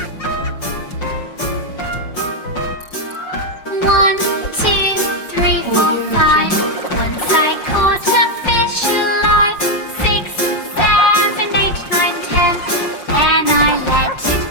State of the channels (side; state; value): right; late; 5.6 ms